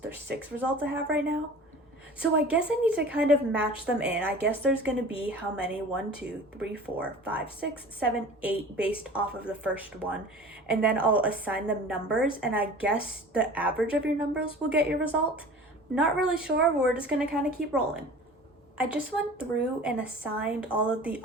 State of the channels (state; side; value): normal; both; correlation 0.41